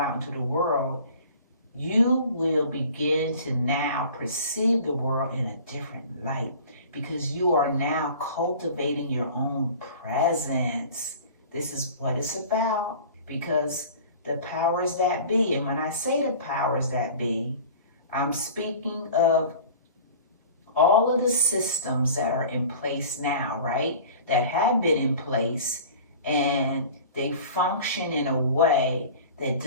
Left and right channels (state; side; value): inverted; both; correlation -0.43